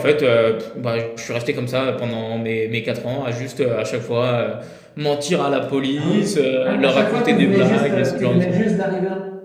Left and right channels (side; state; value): both; identical; correlation 1.00